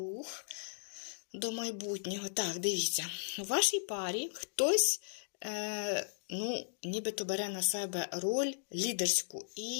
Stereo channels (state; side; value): silent; right; digital silence